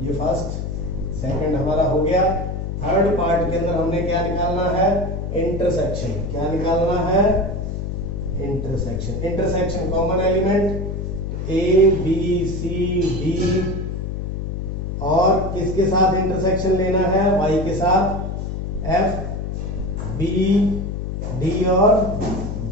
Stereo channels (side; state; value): left; noise; hum, 4 dB below the sound